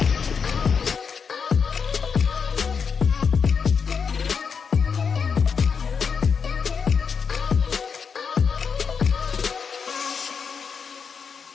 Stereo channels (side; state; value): right; quieter; 6.1 dB